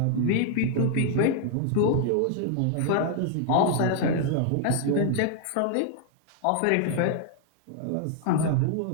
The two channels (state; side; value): different; both; correlation 0.00